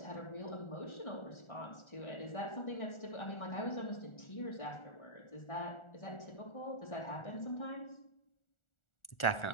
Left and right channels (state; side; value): late; right; 1.4 ms